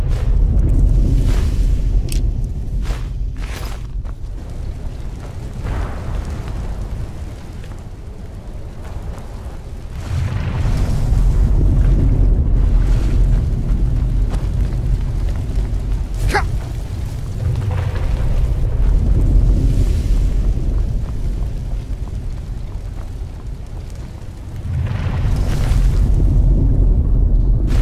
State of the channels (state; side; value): identical; both; correlation 1.00